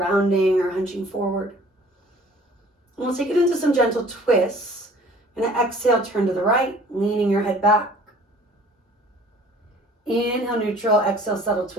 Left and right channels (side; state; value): both; normal; correlation 0.52